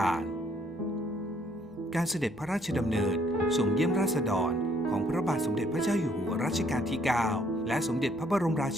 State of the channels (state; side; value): normal; both; correlation 0.66